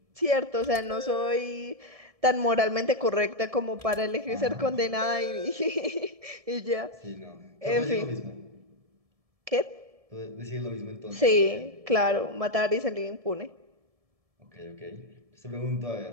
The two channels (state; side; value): late; left; 1.7 ms